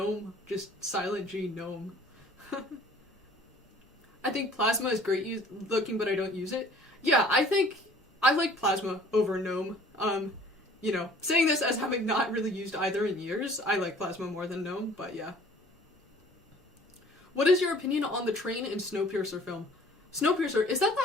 just silent G, GNOME. I think Plasma is great looking, but I don't use it. Yeah, I think I like Plasma over GNOME. You know, saying this as having not really used either in years, I like Plasma more than GNOME, but yeah. What is your opinion on the Train and Snowpiercer film? Snowpiercer, is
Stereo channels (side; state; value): both; normal; correlation 0.52